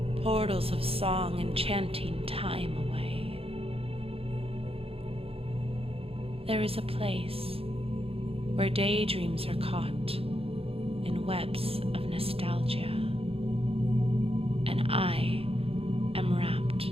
portals of song enchanting time away. There is a place where daydreams are caught in webs of nostalgia, and I am wrapped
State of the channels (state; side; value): late; left; 0.28 ms